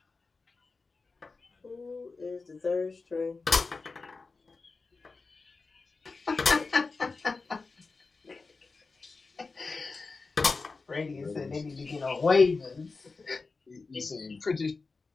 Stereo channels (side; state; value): right; quieter; 4.1 dB